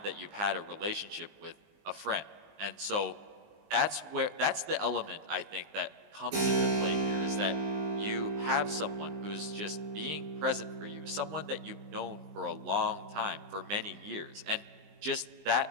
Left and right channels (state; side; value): late; left; 20 ms